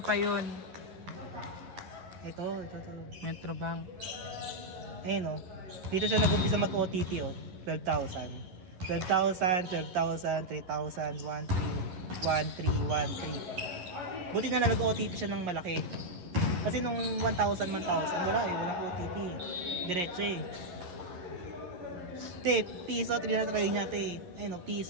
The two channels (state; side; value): late; left; 11 ms